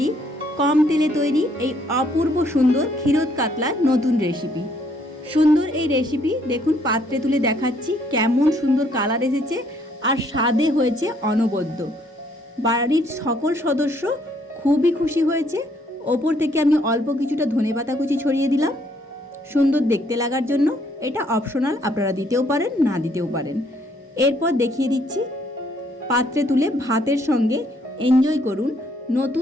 কম তেলে তৈরি এই অপূর্ব সুন্দর ক্ষীরোদ কাতলার নতুন রেসিপি। সুন্দর এই রেসিপি দেখুন, পাত্রে তুলে দেখাচ্ছি কেমন সুন্দর কালার এসেছে আর স্বাদে হয়েছে অনবদ্য। বাড়ির সকল সদস্য খুবই খুশি হয়েছে। ওপর থেকে আমি অল্প কিছুটা ধনেপাতা কুচি ছড়িয়ে দিলাম সুন্দর দেখতে লাগার জন্য। এটা অপশনাল, আপনারা দিতেও পারেন, না দিতেও পারেন। এরপর দেখিয়ে দিচ্ছি পাত্রে তুলে ভাতের সঙ্গে এনজয় করুন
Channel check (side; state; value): both; normal; correlation 0.67